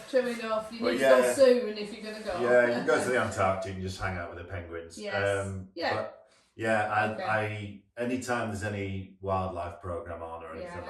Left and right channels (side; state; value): both; identical; correlation 1.00